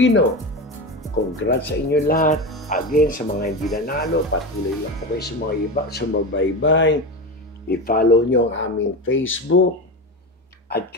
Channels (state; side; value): normal; both; correlation 0.22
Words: Congrats sa inyo lahat. Again, sa mga hindi nanalo, patuloy lang po kayo sa mga iba, sumabaybay. I-follow nyo ang aming Facebook at